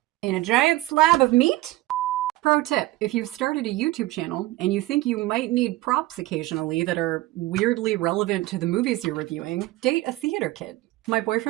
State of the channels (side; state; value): left; quieter; 17.7 dB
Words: in a giant slab of meat? Pro tip, if you've started a YouTube channel and you think you might need props occasionally that are weirdly relevant to the movies you're reviewing, date a theater kid. My